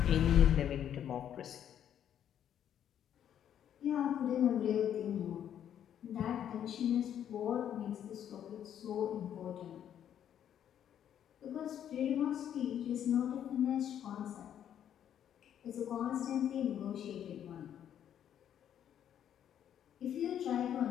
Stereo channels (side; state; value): right; quieter; 9.8 dB